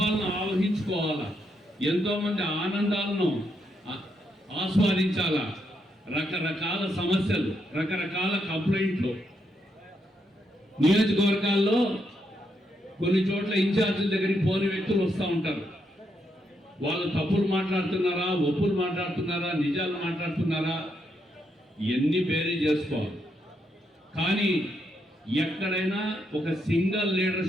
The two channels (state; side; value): normal; both; correlation 0.79